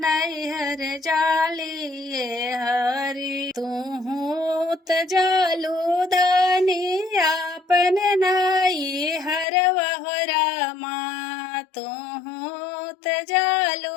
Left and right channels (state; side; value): drops out; right; at 9.5 s